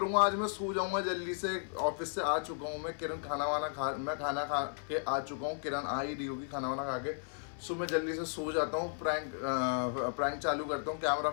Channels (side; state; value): right; silent; 55 dB below the other